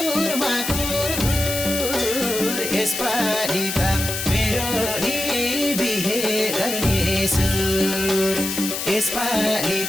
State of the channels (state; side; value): noise; left; hiss, 4 dB below the sound